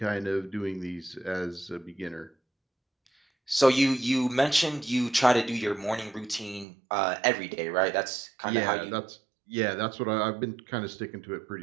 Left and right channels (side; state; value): left; drops out; at 6.7 s